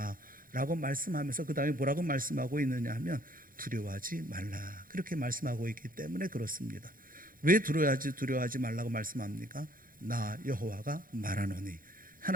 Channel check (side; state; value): left; late; 0.41 ms